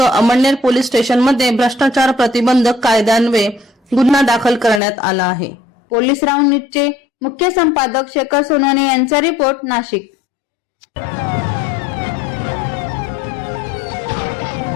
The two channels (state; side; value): drops out; right; at 4.8 s